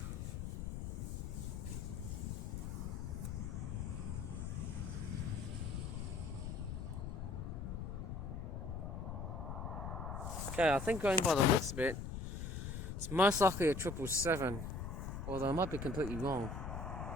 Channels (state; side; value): noise; left; rumble, 5 dB below the sound